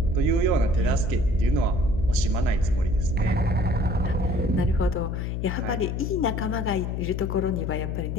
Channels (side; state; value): left; noise; hum, 2 dB below the sound